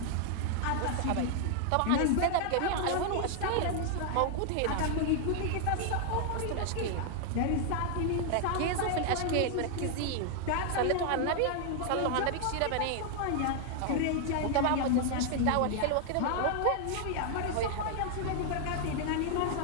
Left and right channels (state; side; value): different; both; correlation 0.00